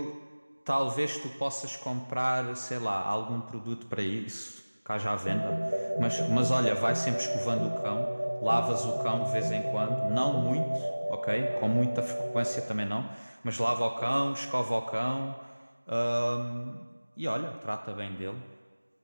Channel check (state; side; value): inverted; both; correlation -1.00